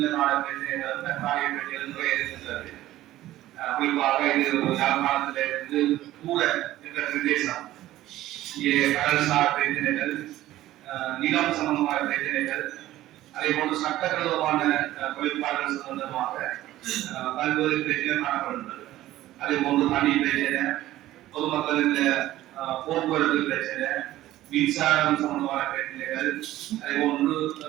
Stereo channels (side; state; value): left; quieter; 14.9 dB